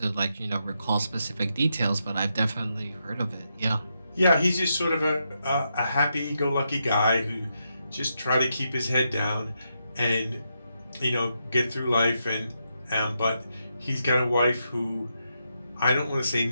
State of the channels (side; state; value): both; inverted; correlation -0.83